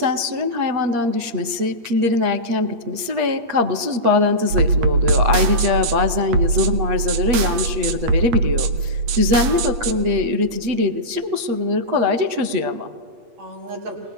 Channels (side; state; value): left; late; 8.6 ms